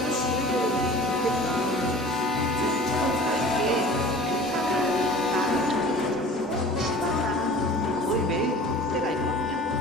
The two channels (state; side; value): normal; both; correlation 0.43